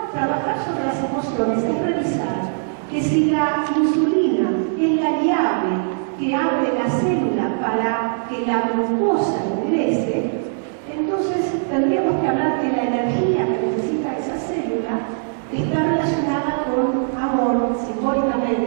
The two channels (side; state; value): left; silent; 65 dB below the other